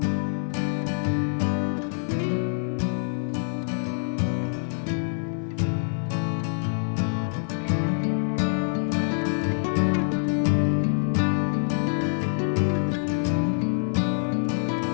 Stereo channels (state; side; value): silent; right; digital silence